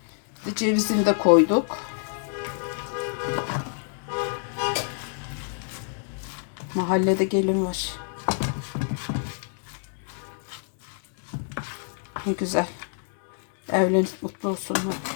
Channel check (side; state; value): right; silent; 60 dB below the other